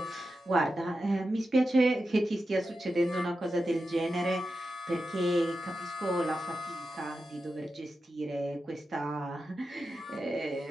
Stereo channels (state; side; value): normal; both; correlation 0.90